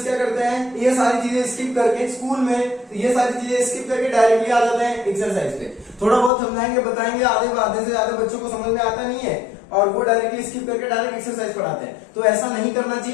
क्या करते हैं, ये सारी चीजें स्किप करके स्कूल में ये सारी चीजें स्किप करके डायरेक्टली आ जाते हैं एक्सरसाइज पे। थोड़ा बहुत समझाएंगे, बताएंगे, आधे से ज्यादा बच्चों को समझ में आता नहीं है और वो डायरेक्टली स्किप करके डायरेक्ट एक्सरसाइज पढ़ाते हैं। तो ऐसा नहीं करना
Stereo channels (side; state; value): right; drops out; at 6.3 s